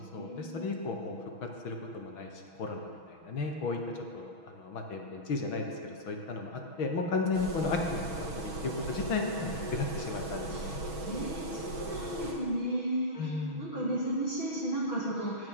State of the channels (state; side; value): late; right; 6.2 ms